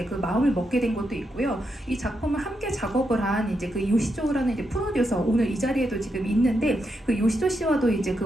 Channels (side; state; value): both; normal; correlation 0.83